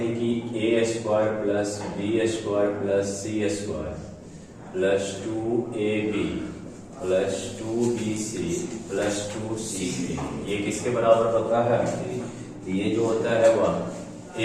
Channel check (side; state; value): both; identical; correlation 1.00